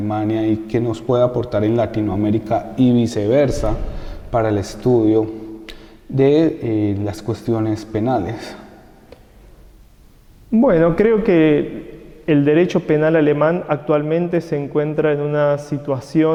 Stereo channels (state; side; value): identical; both; correlation 1.00